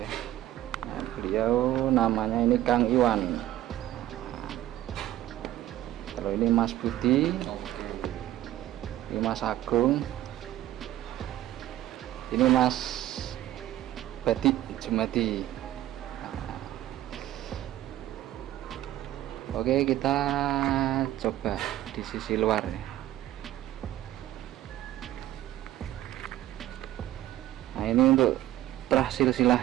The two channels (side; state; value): left; quieter; 13.9 dB